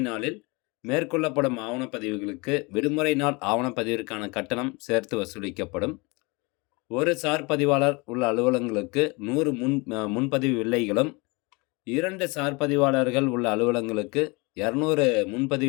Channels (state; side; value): quieter; right; 27.0 dB